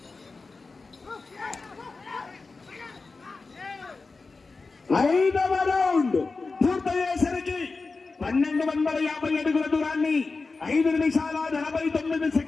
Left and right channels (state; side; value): quieter; right; 4.0 dB